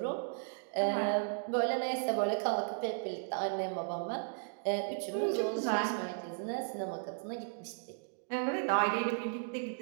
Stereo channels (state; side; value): silent; left; digital silence